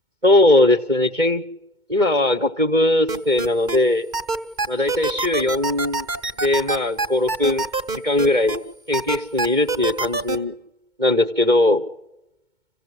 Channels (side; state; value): left; late; 2.2 ms